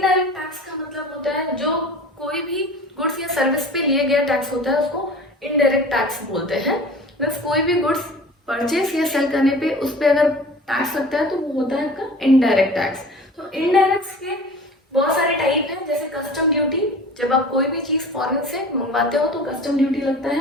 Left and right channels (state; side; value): normal; both; correlation 0.41